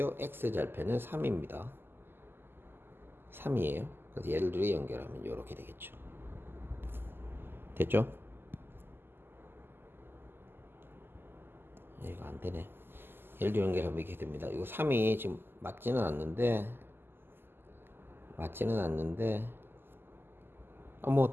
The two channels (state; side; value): late; left; 0.10 ms